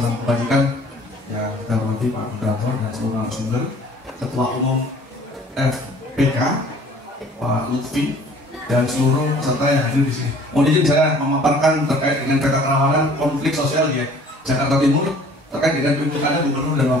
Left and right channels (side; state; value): both; normal; correlation 0.52